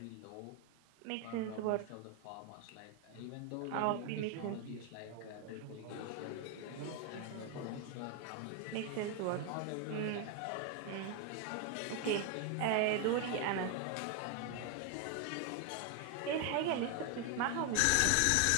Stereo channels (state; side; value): different; both; correlation 0.01